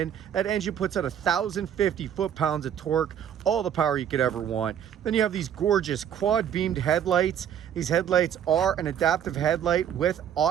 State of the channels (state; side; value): quieter; left; 9.3 dB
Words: That engine puts out 1,050 foot-pounds of torque, all the power you could ever want. Then you have these gorgeous quad beamed headlights. These headlights are an adaptive headlight with